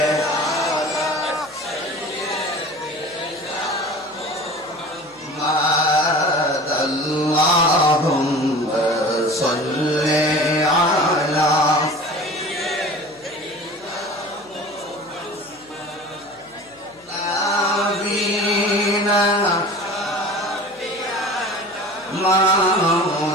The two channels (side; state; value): left; noise; hum, 29 dB below the sound